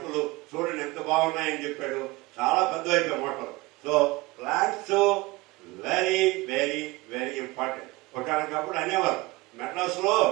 చూడండి ఎంత బాగున్నాయని చెప్పాడు. చాలా పెద్ద అయిపోయాయి మొక్కలు. So plants very very very important. ఒకనకప్పుడు అనేవారు మెడ్రాస్ లో,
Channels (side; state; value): left; quieter; 22.0 dB